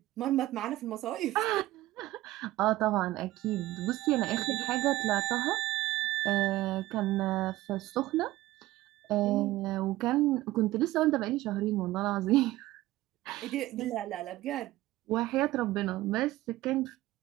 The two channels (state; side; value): quieter; left; 16.8 dB